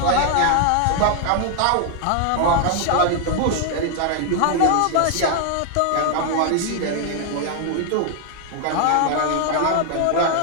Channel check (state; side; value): different; both; correlation 0.00